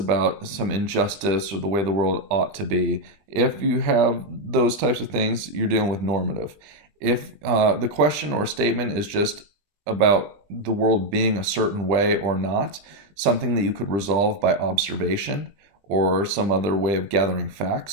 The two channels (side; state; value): left; late; 20 ms